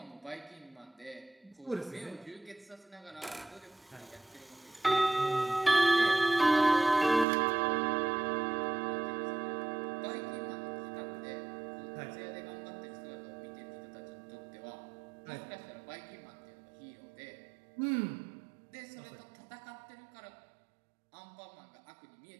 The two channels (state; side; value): drops out; left; at 7.2 s